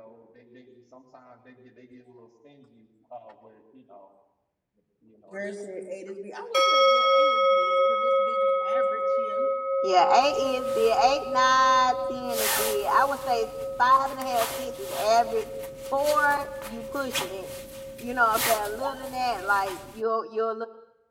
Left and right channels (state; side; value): identical; both; correlation 1.00